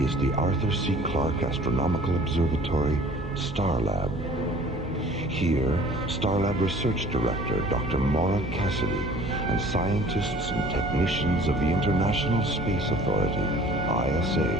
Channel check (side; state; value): both; normal; correlation 0.49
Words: is the Arthur C. Clarke Astronomical Observatory, Starlab. Here, Starlab Research Director Dr. Maura Cassidy and scientists and technicians of the International Space Authority,